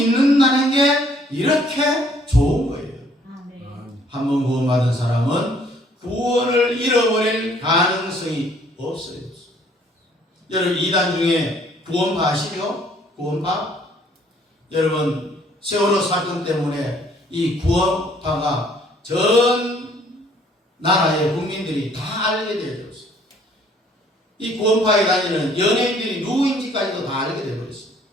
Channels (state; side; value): normal; both; correlation 0.61